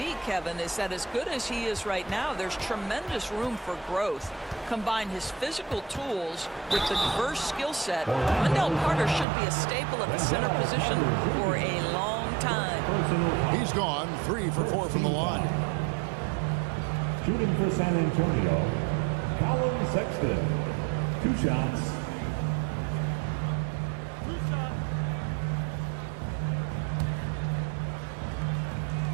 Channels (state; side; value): drops out; left; at 9.2 s